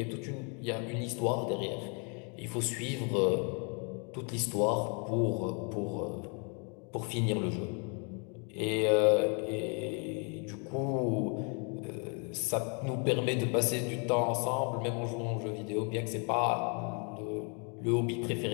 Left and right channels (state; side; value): quieter; right; 37.1 dB